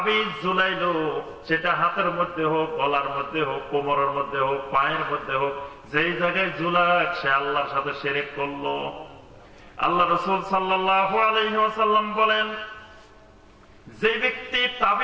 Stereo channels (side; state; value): both; identical; correlation 1.00